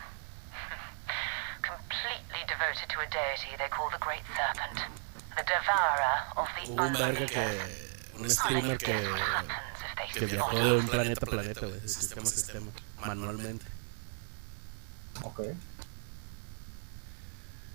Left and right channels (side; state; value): left; silent; 54 dB below the other